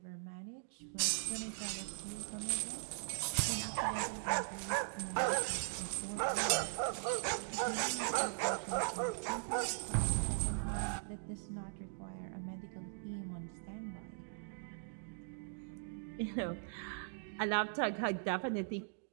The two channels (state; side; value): silent; left; digital silence